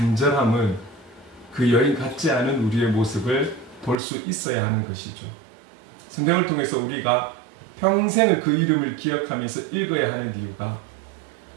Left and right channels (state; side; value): drops out; left; at 4.0 s